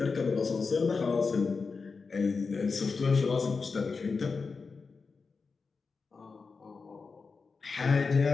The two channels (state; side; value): quieter; right; 4.7 dB